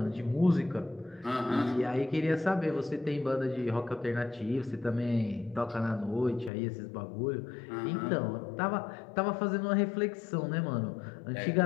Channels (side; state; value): right; drops out; at 6.5 s